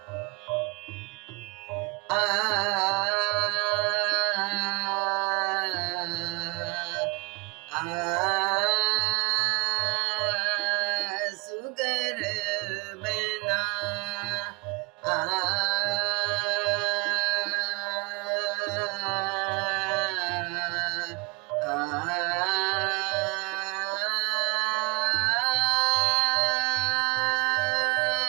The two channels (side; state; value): left; quieter; 28.1 dB